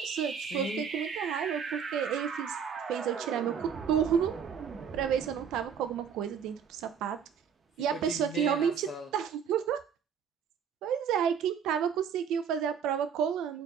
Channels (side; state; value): left; quieter; 7.4 dB